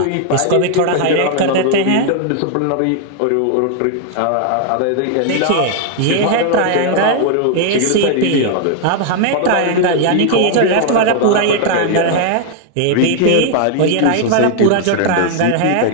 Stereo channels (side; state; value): both; different; correlation 0.00